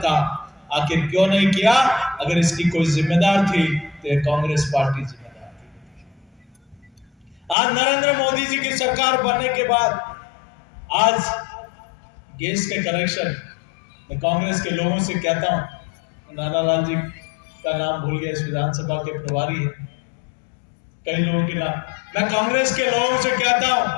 आखिर क्यों नहीं किया? अगर इसकी कोई जिम्मेदार थी तो कांग्रेस पार्टी जिम्मेदार थी। आज नरेंद्र मोदी जी की सरकार बनने के बाद आज गैस के कनेक्शन, मैं कांग्रेस के लोगों से कहता हूं, नानालाल जी का नाम भूल गया, इस विधानसभा के प्रभारी है, कई लोगों के नाम, मैं कांग्रेस के लोगों से कहता हूं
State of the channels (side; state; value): right; drops out; at 7.6 s